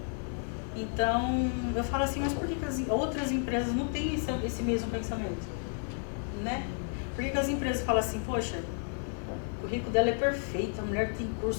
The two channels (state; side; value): silent; right; 57 dB below the other